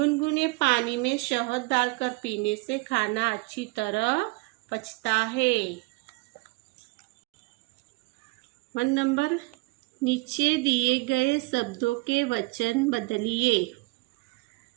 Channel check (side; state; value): left; quieter; 25.5 dB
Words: पानी में शहद डालकर पीने से खाना अच्छी तरह पचता है। 1 नंबर, नीचे दिए गए शब्दों के वचन बदलिए।